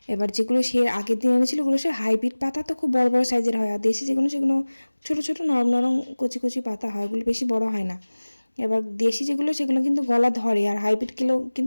এবার যেগুলো সে আগের দিন এনেছিল ওগুলো সে হাইব্রিড পাতা, তো খুব বড় বড় সাইজের হয়, আর দেশি যেগুলো সেগুলো ছোটো ছোটো নরম নরম কচি কচি পাতা হয়, ওগুলো বেশি বড় হয় না। এবার দেশি যেগুলো সেগুলো কিন্তু গলা ধরে, আর হাইব্রিড কিলো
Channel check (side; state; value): both; inverted; correlation -1.00